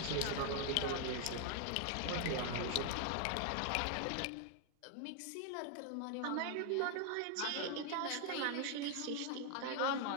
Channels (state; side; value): different; both; correlation 0.00